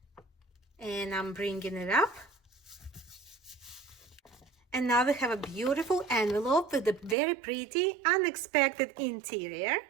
And I'm bringing it up. And now we have a beautiful envelope with a very pretty, unexpected interior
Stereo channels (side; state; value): left; drops out; at 7.2 s